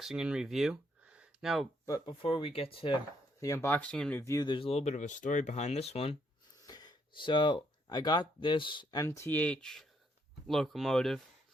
and review. But before we get to the unboxing and review, there's a little bit of a story behind this one. So, I got this MTH locomotive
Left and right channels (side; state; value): both; normal; correlation 0.72